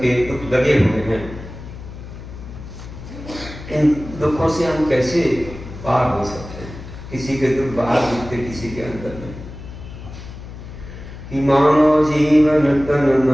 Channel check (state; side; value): noise; left; hum, 13 dB below the sound